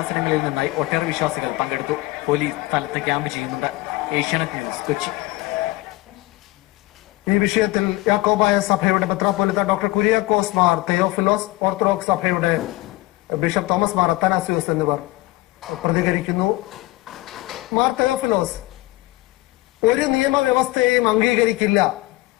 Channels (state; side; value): quieter; right; 19.7 dB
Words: നിന്നായി ഒട്ടേറെ വിശ്വാസികൾ പങ്കെടുത്തു. പോലീസ് സ്ഥലത്ത് ക്യാമ്പ് ചെയ്യുന്നുണ്ട്. ഏഷ്യാനെറ്റ് ന്യൂസ്, കൊച്ചി. ഈ വിഷയത്തിൽ യാക്കോബായ സഭയുടെ മെത്രാപ്പോലിത്ത ഡോക്ടർ കുര്യാക്കോസ് മാർ തെയോഫിലോസ്, ഓർത്തഡോക്സ് സഭയുടെ ബിഷപ്പ് തോമസ് മാർ അത്തനാസിയോസ് എന്നിവർ പ്രതികരിക്കുന്നു. മാർ തെയോഫിലോസ്, ഒരു നിയമവ്യവസ്ഥയെയും അംഗീകരിക്കില്ല,